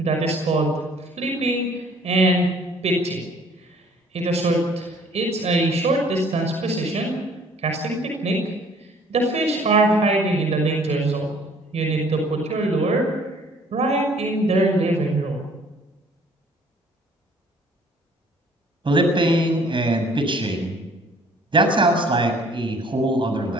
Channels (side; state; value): both; normal; correlation 0.57